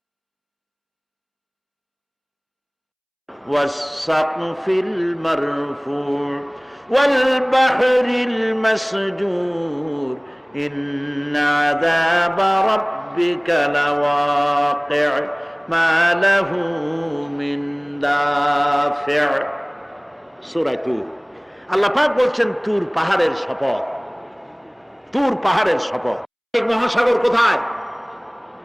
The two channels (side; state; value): both; identical; correlation 1.00